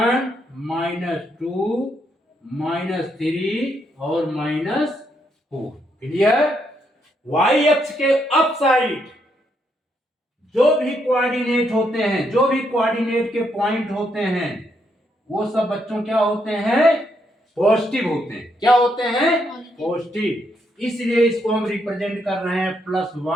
-2 -3 और -4। क्लियर? वाई अक्ष के अप साइड जो भी कोऑर्डिनेट होते हैं, जो भी कोऑर्डिनेट के पॉइंट होते हैं, वो सब बच्चों क्या होते हैं? पॉजिटिव होते हैं। क्या होते हैं? पॉजिटिव। इसलिए इसको हम रिप्रेजेंट कर रहे हैं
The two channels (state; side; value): normal; both; correlation 0.77